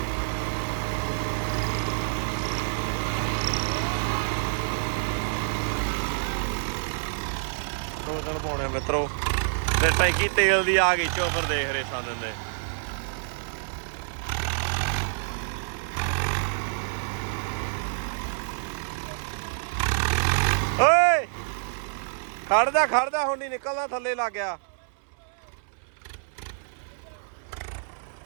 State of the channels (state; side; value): silent; left; digital silence